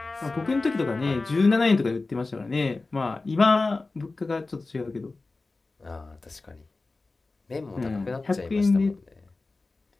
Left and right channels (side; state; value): right; quieter; 3.5 dB